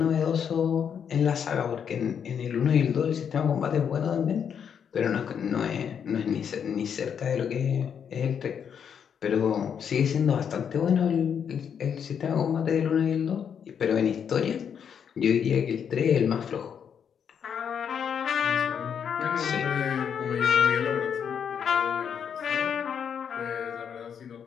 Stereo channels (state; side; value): quieter; right; 7.7 dB